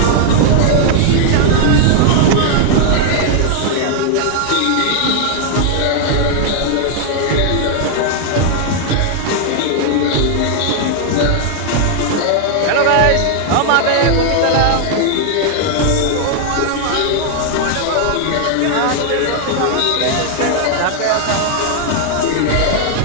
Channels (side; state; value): both; different; correlation 0.00